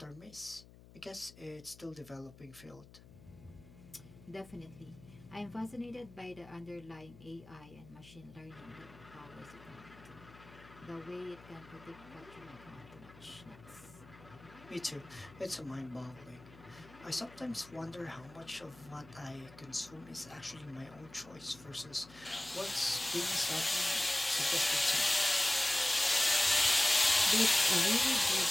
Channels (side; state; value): left; noise; hum, 21 dB below the sound